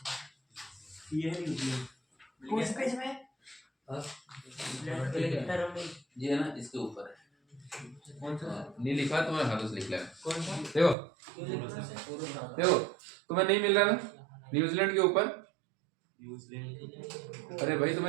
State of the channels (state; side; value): drops out; left; at 11.0 s